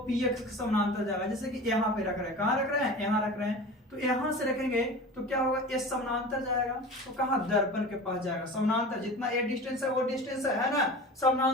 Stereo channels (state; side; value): normal; both; correlation 0.35